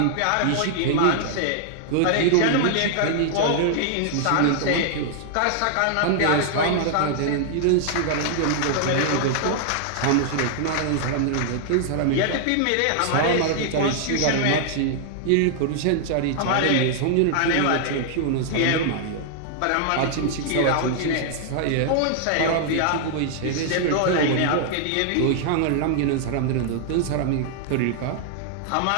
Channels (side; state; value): both; different; correlation -0.01